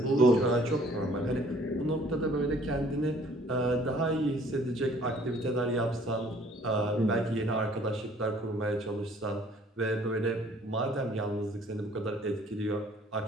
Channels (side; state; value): both; normal; correlation 0.57